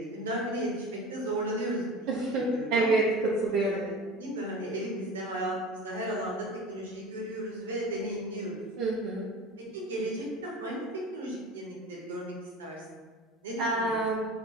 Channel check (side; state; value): both; normal; correlation 0.35